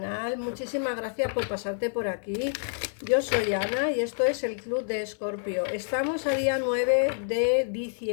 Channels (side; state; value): right; silent; digital silence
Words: Muchísimas gracias por pasarte por aquí. Yo soy Ana y esto es el Club de Escorpio. Estamos a día 9 de